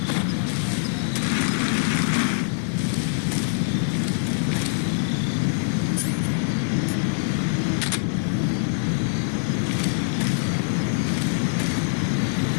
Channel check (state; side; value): silent; right; digital silence